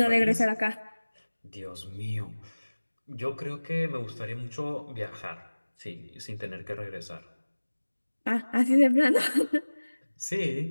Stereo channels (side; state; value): both; inverted; correlation -1.00